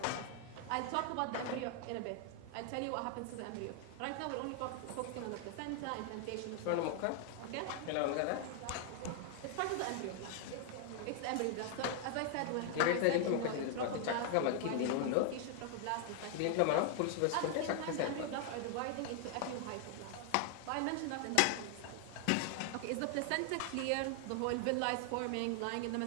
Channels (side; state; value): both; different; correlation 0.00